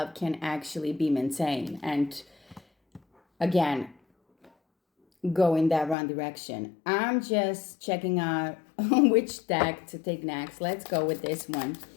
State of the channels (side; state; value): right; drops out; at 6.0 s